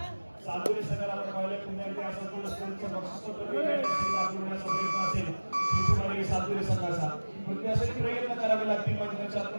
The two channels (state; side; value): inverted; both; correlation -1.00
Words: सातपुरे संघाला आपण पाहिलं पुन्हा एकदा संपूर्ण स्पर्धेचं बक्षीस पत्र होण्याचा प्रयत्न असेल श्री सातपुरे संघाचा. पण त्यासाठी प्रयत्न करावे लागतील. मात्र